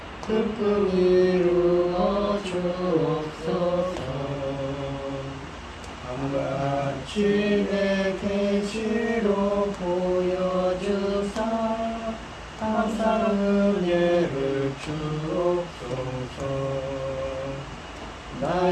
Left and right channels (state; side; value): identical; both; correlation 1.00